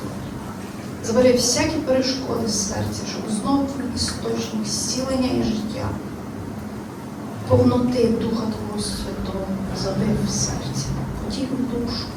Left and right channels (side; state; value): both; identical; correlation 1.00